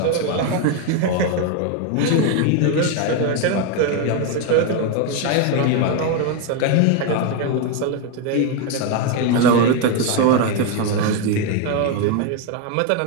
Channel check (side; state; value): both; different; correlation 0.02